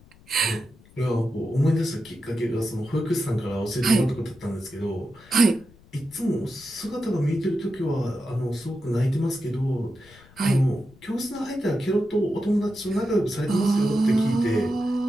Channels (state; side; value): noise; left; rumble, 26 dB below the sound